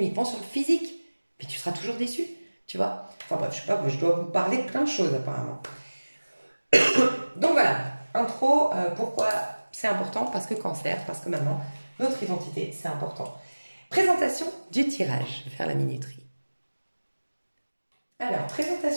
sur le physique. Puis tu seras toujours déçu, tu vois. Enfin bref, je sais pas, je dois vous parler de plein de choses apparemment. Donc voilà, intro, pourquoi c'est important? Parce que cancer, parce que maintenant, notre identité, c'est important. Présentation du tirage, je vais faire la minuterie. Alors,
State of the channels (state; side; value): inverted; both; correlation -1.00